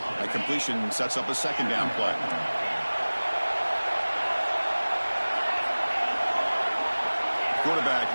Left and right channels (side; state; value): both; inverted; correlation -1.00